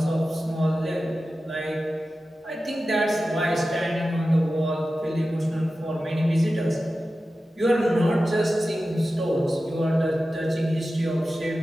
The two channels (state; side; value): normal; both; correlation 0.94